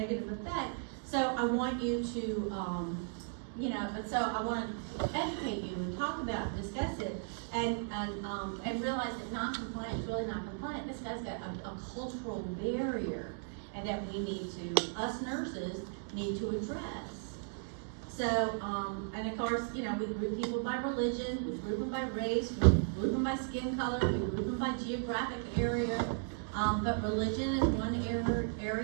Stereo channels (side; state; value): left; silent; digital silence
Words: effect. So I want you to, so I wanna educate you and talk about, discuss it, and realize that non-compliant is really not compliant. This guy's got a cultural barrier, and that we need to, us nurses, need to address. So, and of course, we group people by religion, we group them by race, we group them by skin color, we group them by geographic area. But religion is one